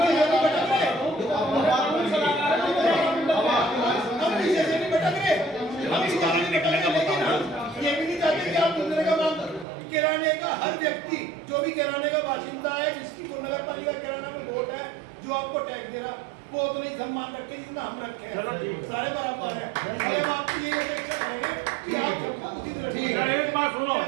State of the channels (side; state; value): left; drops out; at 9.7 s